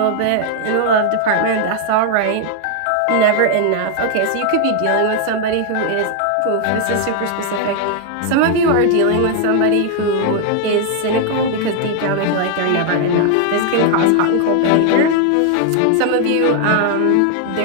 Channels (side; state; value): both; different; correlation 0.00